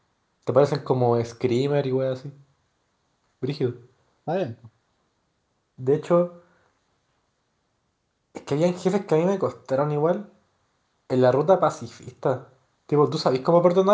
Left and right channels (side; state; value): both; identical; correlation 1.00